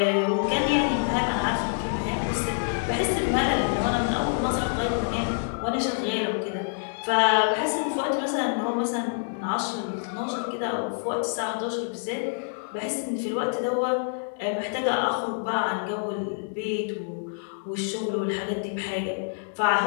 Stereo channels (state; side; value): silent; right; digital silence